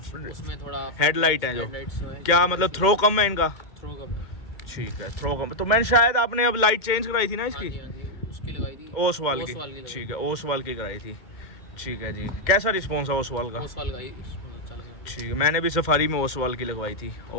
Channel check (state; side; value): late; right; 2.1 ms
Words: उसमें थोड़ा हेडलाइट है जो, हेडलाइट्स है, क्या मतलब थ्रो कम है इनका? थ्रो कम है। ठीक है, थ्रो कम। तो मैंने शायद आपने अब लाइट चेंज कराई थी ना हाँ इसकी? जी हाँ जी, उसकी लगाई थी। ओसवाल की। ओसवाल की लगाई। ठीक है, ओसवाल की कराई थी। ठीक है जी, कैसा रिस्पॉन्स है ओसवाल का? ओसवाल का ही अच्छा लगा। ठीक है, मैंने भी सफारी में ओसवाल की लगवाई थी।